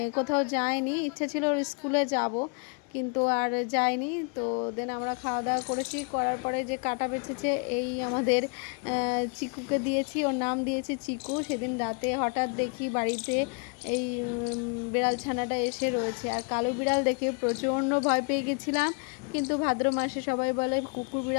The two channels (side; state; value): right; quieter; 35.8 dB